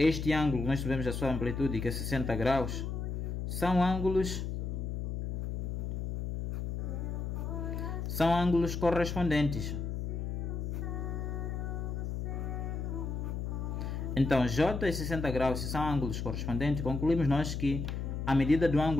ângulo, nós sabemos a sua amplitude, que é 60 graus, são ângulos correspondentes. Então, J e 60 graus, se são ângulos correspondentes, concluímos nós que a medida do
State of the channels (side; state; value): left; noise; hum, 3 dB below the sound